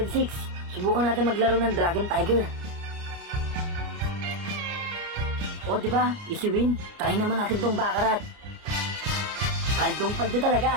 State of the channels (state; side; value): late; left; 29 ms